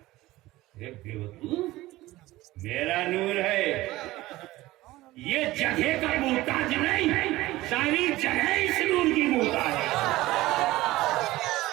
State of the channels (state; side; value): quieter; left; 17.8 dB